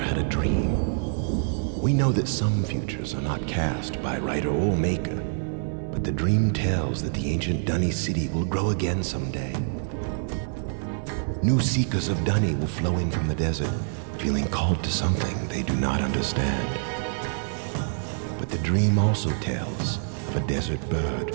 a dream. We know that some futures are not cast by writer or maker, but the dream tells that the ancient Dunny city will grow again someday. New seekers of Dunny will flow in from the desert, feeling called to something they do not understand. But the dream also tells of a desert bird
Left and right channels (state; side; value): silent; left; digital silence